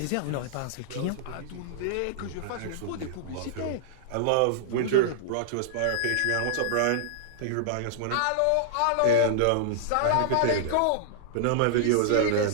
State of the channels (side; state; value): both; different; correlation -0.01